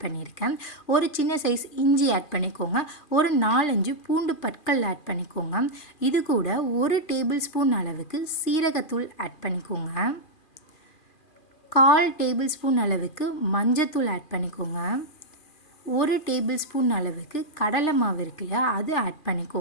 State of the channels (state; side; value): late; right; 2.4 ms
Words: பண்ணியிருக்கேன். ஒரு சின்ன சைஸ் இஞ்சி ஆட் பண்ணிக்கோங்க. ஒரு 4-5 பூண்டு பற்கள் ஆட் பண்ணிக்கோங்க. இது கூட 1 டேபிள் ஸ்பூன் அளவுக்கு சீரகத்தூள் ஆட் பண்ணிக்கோங்க. 1/4 டேபிள் ஸ்பூன் அளவுக்கு மஞ்சத்தூள் ஆட் பண்ணிக்கோங்க. 1 டேபிள் ஸ்பூன் அளவுக்கு கடலை மாவு இருக்கு இல்லையா, அது ஆட்